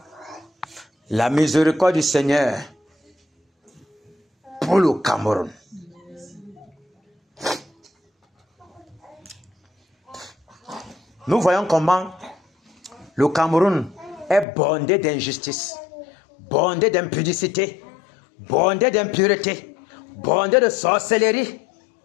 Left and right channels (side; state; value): right; drops out; at 14.5 s